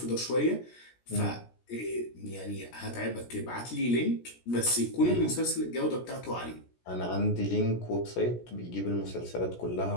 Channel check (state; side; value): late; right; 17 ms